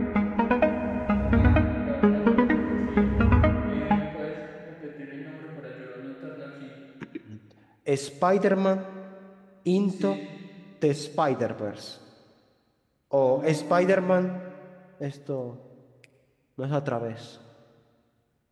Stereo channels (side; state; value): both; identical; correlation 1.00